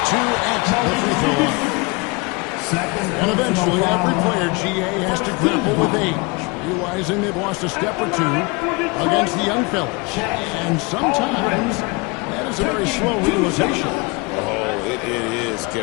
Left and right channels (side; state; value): right; quieter; 27.3 dB